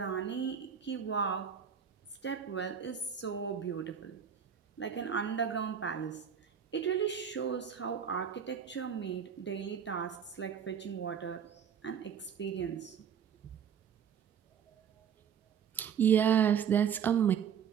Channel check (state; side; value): quieter; left; 7.7 dB